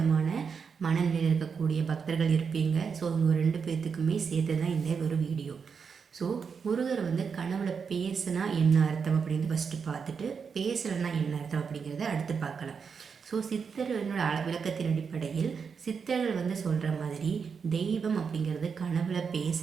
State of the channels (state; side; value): quieter; left; 6.0 dB